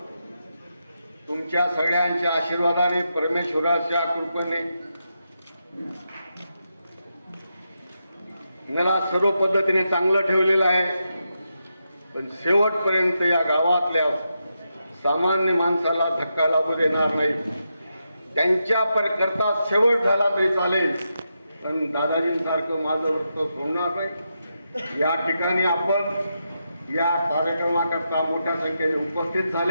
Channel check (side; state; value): both; inverted; correlation -0.85